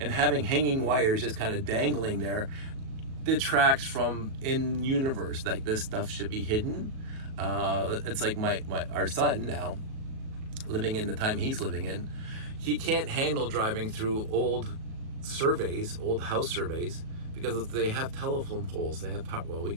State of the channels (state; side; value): late; left; 37 ms